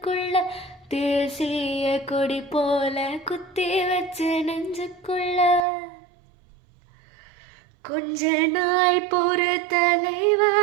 தேசிய கொடி போல குத்தி வச்ச நெஞ்சுக்குள்ள கொஞ்ச நாள் பொறு தலைவா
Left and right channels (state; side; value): drops out; left; at 5.7 s